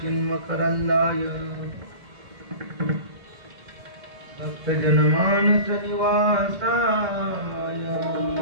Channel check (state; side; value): late; left; 1.8 ms